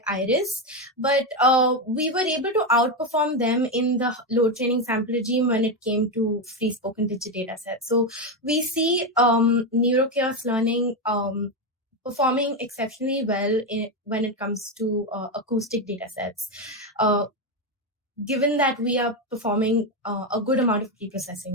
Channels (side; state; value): both; normal; correlation 0.10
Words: iris, but we were able to outperform them in the load training sample regime when it came to free spoken digit data sets. So we see neurochaos learning performing exceptionally well when it comes to acoustic data sets, given that we are performing a good amount of